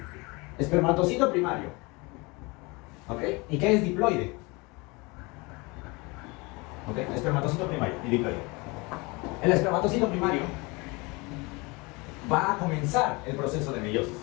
Espermatocito primario. ¿Ok? ¿Y qué es diploide? ¿Ok? Espermatocito primario y diploide. El espermatocito primario va a comenzar el proceso de meiosis.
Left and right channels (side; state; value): right; quieter; 26.3 dB